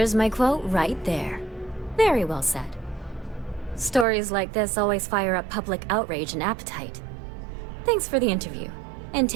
my quote right there. Very well said. Stories like this always fire up public outrage and appetite. Thanks for the interview. And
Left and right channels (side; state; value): left; drops out; at 4.0 s